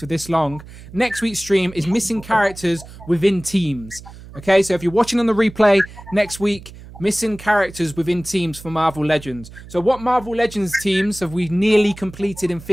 this long. Next week's stream is missing characters within teams. Okay, so if you're watching on the replay next week, missing characters within teams for Marvel Legends. So what Marvel Legends teams have we nearly completed in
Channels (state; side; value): noise; right; hum, 17 dB below the sound